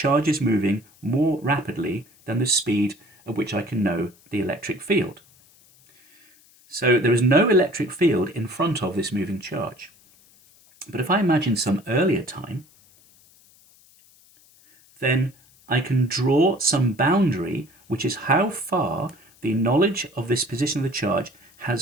is moving more rapidly than the speed at which I can know the electric field. So there is no electric field in front of this moving charge. But if I imagine some earlier time, then I can draw some boundary which is how far the knowledge of this position of the charge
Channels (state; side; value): noise; left; hiss, 29 dB below the sound